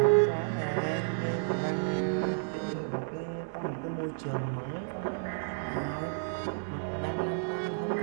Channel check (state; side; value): silent; left; digital silence